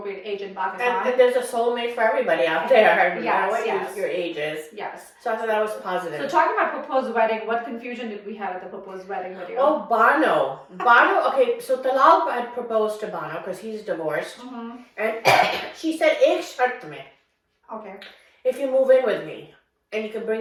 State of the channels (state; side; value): identical; both; correlation 1.00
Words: age in Pakistan. And there's a soulmate for everybody out there, no matter what your age is. Yes. So I thought that was positive. So talking about proposed wedding, what confusion did we have at the proposed wedding video? Oh, Bano, okay, so Talal had proposed to Bano because he's divorced. And she said, ek shart mein. Okay. If you move in with me, and you can